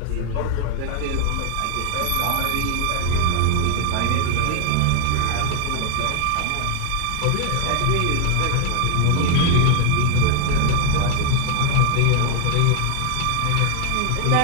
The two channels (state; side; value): different; both; correlation 0.00